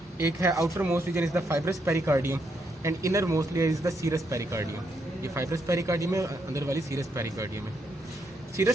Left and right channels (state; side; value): normal; both; correlation 0.77